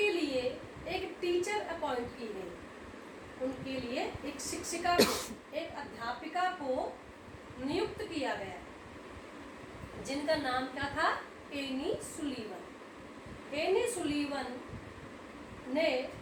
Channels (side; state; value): both; identical; correlation 1.00